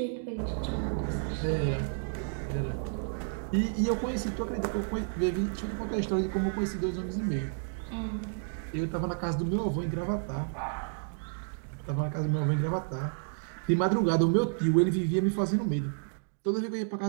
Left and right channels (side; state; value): left; silent; digital silence